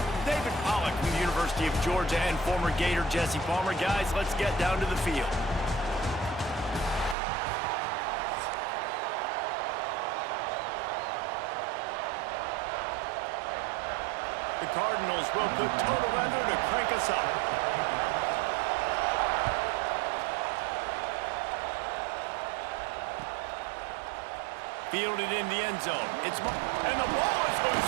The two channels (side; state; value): left; drops out; at 7.2 s